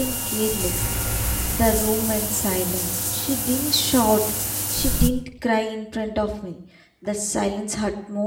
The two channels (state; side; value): identical; both; correlation 1.00